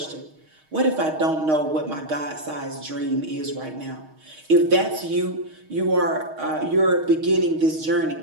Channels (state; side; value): late; left; 6.4 ms